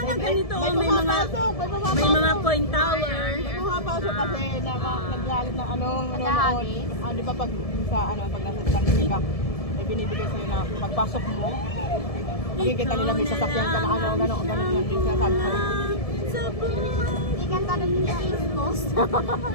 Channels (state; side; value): late; right; 1.7 ms